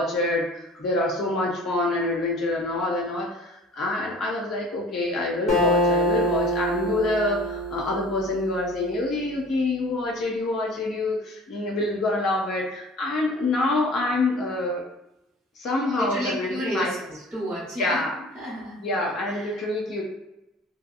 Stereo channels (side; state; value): both; normal; correlation 0.45